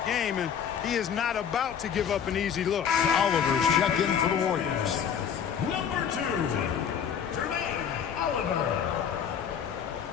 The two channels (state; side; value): quieter; right; 8.0 dB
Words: game, and he is not about to give up an easy look. Oliver's checked in for the Warriors. Number 2, Jermaine Oliver.